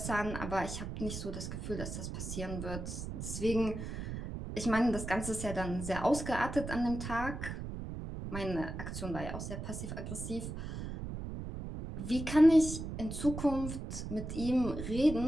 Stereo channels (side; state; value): right; noise; rumble, 6 dB below the sound